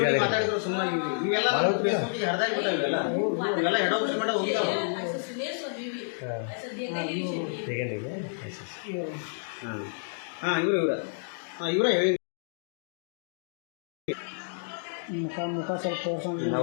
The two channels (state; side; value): silent; right; digital silence